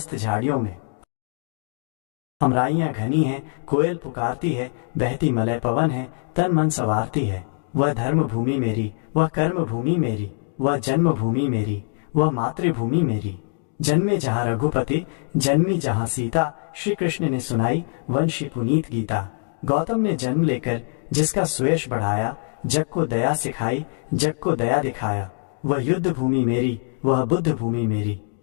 झाड़ियों में। अमराइयां घनी हैं, कोयल पुकारती है, बहती मलय पवन है, तन मन संवारती है। वह धर्म भूमि मेरी, वह कर्म भूमि मेरी, वह जन्मभूमि मेरी, वह मातृभूमि मेरी। जन्मे जहाँ रघुपति, जन्मी जहाँ सीता, श्री कृष्ण ने सुनाई वंशी पुनीत गीता। गौतम ने जन्म लेकर जिसका सुयश बढ़ाया, जग को दया सिखाई, जग को दया दिखाया। वह युद्ध भूमि मेरी, वह बुद्ध भूमि मेरी,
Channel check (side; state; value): right; silent; 62 dB below the other